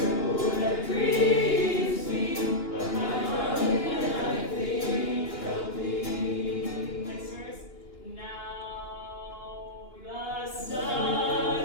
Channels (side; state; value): right; late; 2.9 ms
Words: that grieves me, but my heart and I think of thee. Next verse. Now the sun